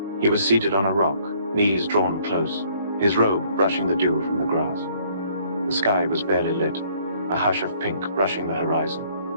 He was seated on a rock, knees drawn close, his robe brushing the dew from the grass. The sky was barely lit, a hush of pink brushing the horizon.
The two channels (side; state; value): both; inverted; correlation -0.62